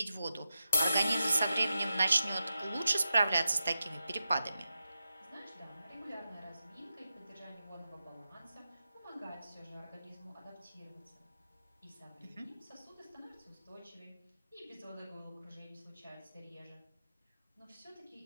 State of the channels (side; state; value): both; inverted; correlation -0.89